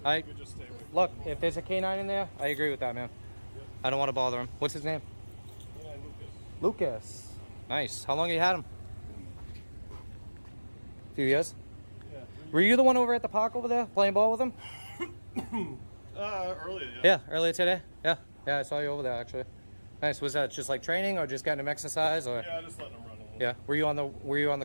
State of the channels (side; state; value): both; inverted; correlation -1.00